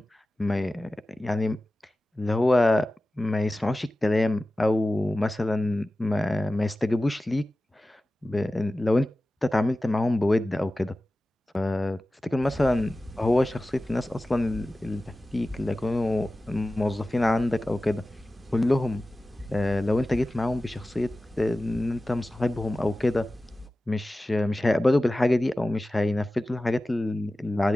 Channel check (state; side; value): normal; both; correlation 0.95